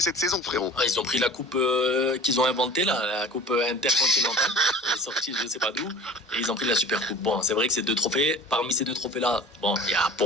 saison, frérot. Ils ont pris la coupe qu'ils ont inventée, là, la coupe intercontinentale, elle est sortie je sais pas d'où, et ils ont pris la super coupe. Bon, c'est vrai que c'est 2 trophées. Parmi ces 2 trophées-là, bon, il y a,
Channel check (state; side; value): normal; both; correlation 0.41